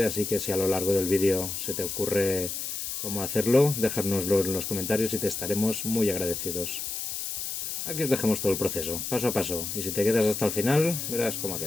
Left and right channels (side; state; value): left; noise; hiss, 5 dB below the sound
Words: así que si a lo largo del vídeo se te ocurre cómo hacerlo, dejárnoslo en los comentarios y te estaremos muy agradecidos. Aquí os dejamos todo el proceso, paso a paso, y si te quedas hasta el final, verás cómo ha